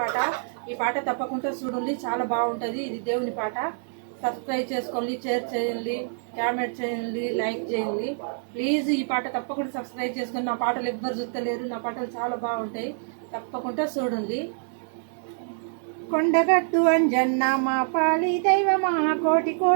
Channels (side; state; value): left; silent; digital silence